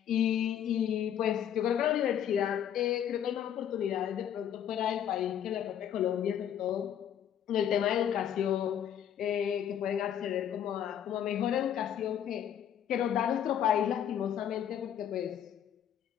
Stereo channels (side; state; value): right; quieter; 9.7 dB